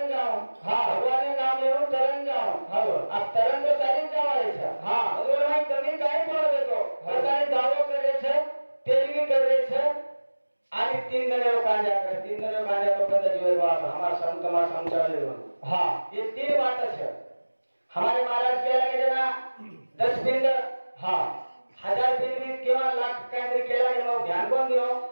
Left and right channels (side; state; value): both; inverted; correlation -1.00